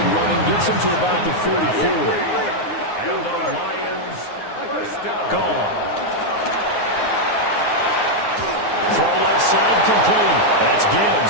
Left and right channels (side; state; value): right; late; 9.6 ms